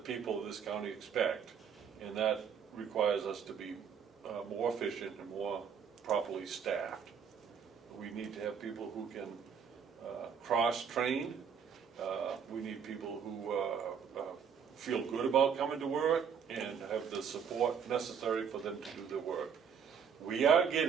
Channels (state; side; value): quieter; left; 7.1 dB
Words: of this county expect, and that requires us to be more efficient and more properly staffed. We need to have people who can cross-train. We need people who feel good about coming to work and have the support necessary for them to do their work. We are